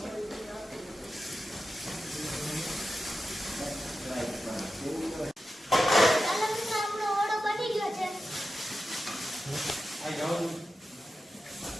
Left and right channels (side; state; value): both; normal; correlation 0.92